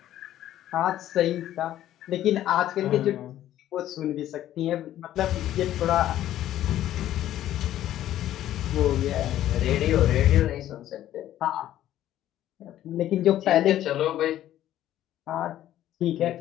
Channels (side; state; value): right; quieter; 12.6 dB